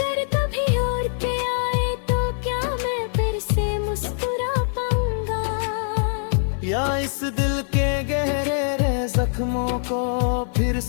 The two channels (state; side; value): silent; right; digital silence